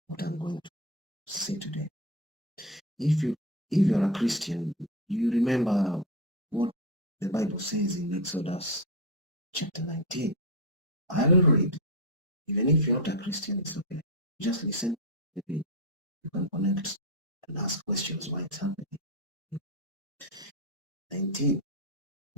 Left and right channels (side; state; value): both; normal; correlation 0.12